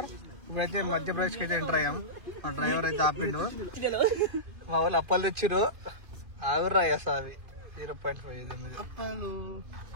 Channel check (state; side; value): late; left; 2.5 ms